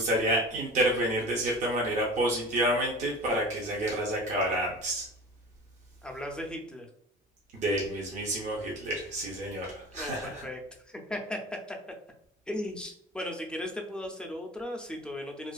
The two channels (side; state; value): both; normal; correlation 0.37